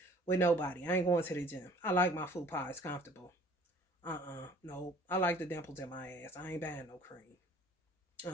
with nobody. I ain't going to the gym. I like my food pie. It's comfortable. No. I like the dimples in my ass. I ain't buying no cream.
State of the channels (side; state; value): both; normal; correlation 0.52